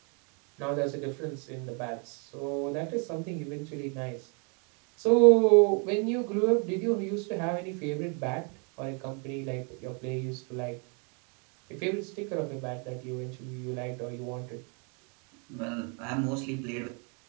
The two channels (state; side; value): quieter; left; 36.7 dB